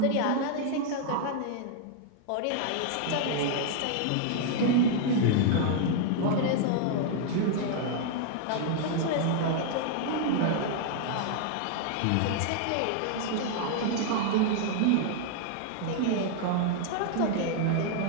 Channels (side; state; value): both; different; correlation 0.00